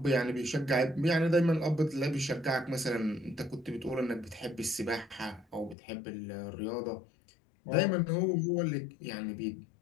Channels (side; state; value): right; drops out; at 5.8 s